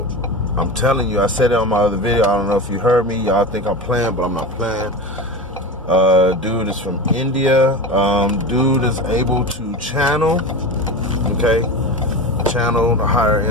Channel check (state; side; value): normal; both; correlation 0.26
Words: I'm telling you, I said it on my other video. I don't know if you heard me. Y'all think I'm playing, but I'm not playing. Dude is from India. Dude is able to channel, okay? Channel the higher